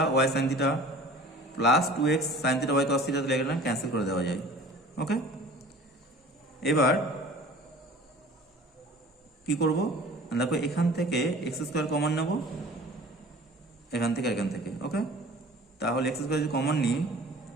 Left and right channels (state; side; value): normal; both; correlation 0.45